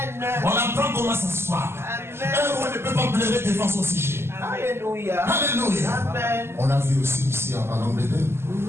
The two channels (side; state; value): left; late; 0.12 ms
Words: On apprend comment s'asseoir. Un roi ne peut pas pleurer devant son sujet. Alléluia. Alléluia. Amen. On a vu aussi ici en Angleterre,